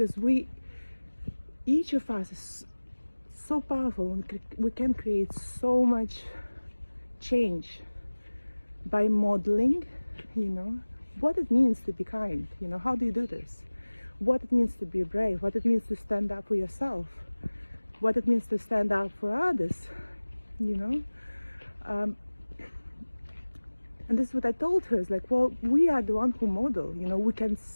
each of us is so powerful, and we can create so much change by modeling, you know, what it means to be kind, you know. How do you do this? What it means to be brave, what it means to stand up for yourself, what it means to stand up for others, you know. And this is what I told her, is like, well, we are the one who model, you know. We can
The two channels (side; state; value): both; inverted; correlation -1.00